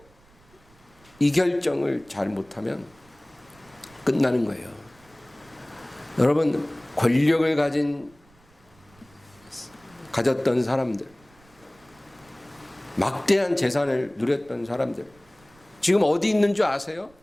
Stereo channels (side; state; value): right; noise; rumble, 29 dB below the sound